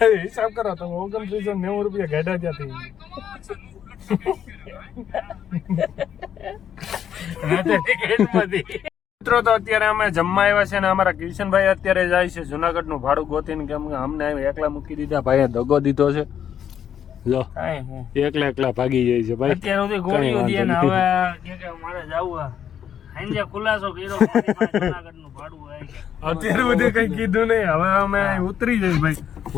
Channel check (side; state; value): right; quieter; 9.1 dB